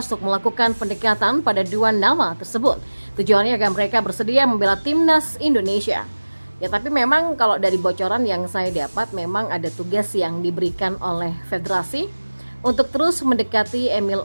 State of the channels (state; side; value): inverted; both; correlation -1.00